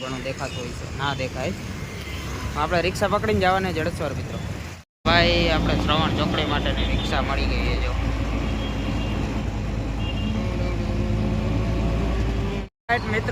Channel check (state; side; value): identical; both; correlation 1.00